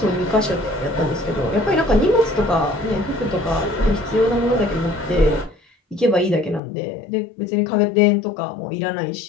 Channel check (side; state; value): right; drops out; at 6.6 s